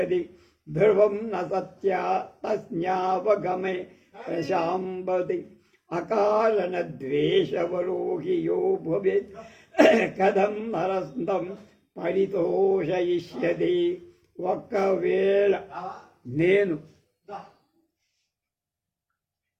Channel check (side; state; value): both; identical; correlation 1.00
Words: ధ్రువం న సత్యా తస్యావగమే ప్రశాంబతి అకారణద్వేషవరో హి యో భవేత్ కథం నరస్తం పరితోషయిష్యతి. ఒక్కవేళ నేను